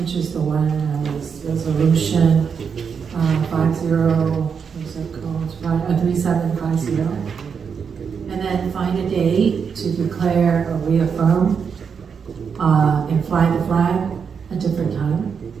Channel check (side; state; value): left; quieter; 6.4 dB